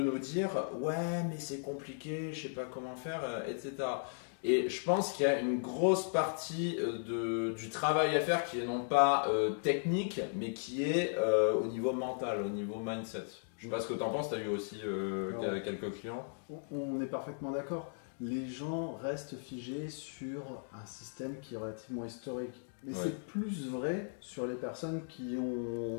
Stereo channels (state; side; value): silent; right; digital silence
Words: dire ouais, mais c'est compliqué, je sais pas comment faire, etc. Et je pense qu'il y a une grosse partie du travail à faire qui est non pas technique, mais qui est au niveau mental, au niveau mindset. Je sais pas ce que tu en penses, tu as eu aussi quelques clients. On est parfaitement d'accord. Les gens restent figés sur un système qui est relativement historique. Mais c'est plus vrai sur les personnes qui ont,